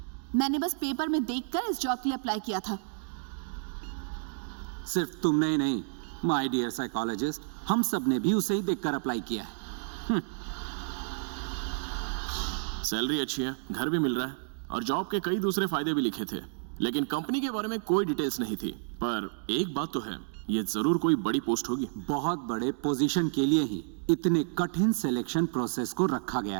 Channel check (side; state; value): left; silent; digital silence